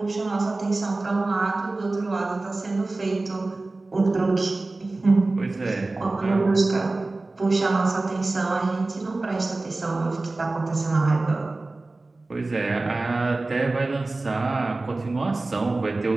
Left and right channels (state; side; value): quieter; left; 3.2 dB